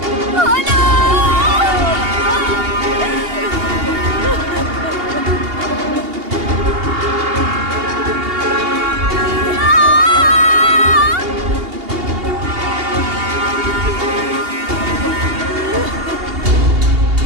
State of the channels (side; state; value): left; late; 2.8 ms